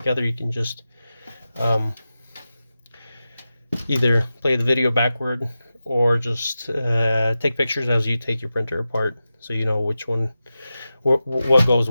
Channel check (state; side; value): inverted; both; correlation -0.93